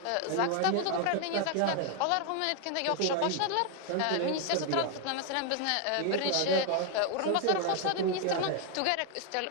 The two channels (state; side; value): different; both; correlation 0.01